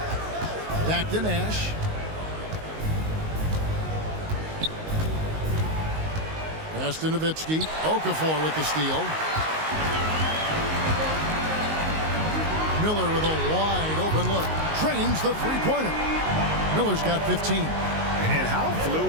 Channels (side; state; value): left; late; 19 ms